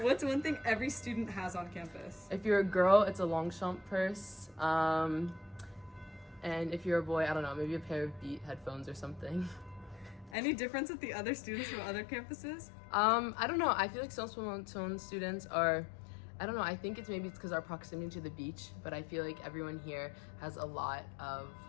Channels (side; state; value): right; drops out; at 10.4 s